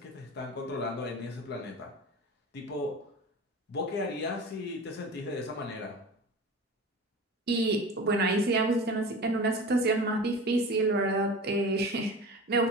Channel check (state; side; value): normal; both; correlation 0.34